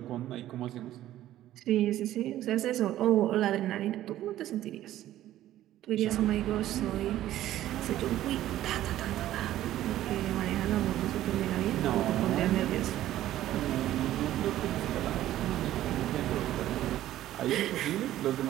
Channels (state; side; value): quieter; left; 13.5 dB